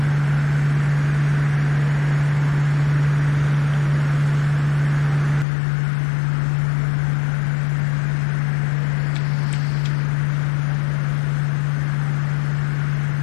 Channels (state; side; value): drops out; right; at 5.5 s